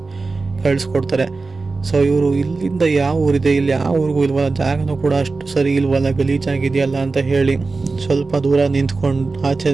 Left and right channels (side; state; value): left; quieter; 3.9 dB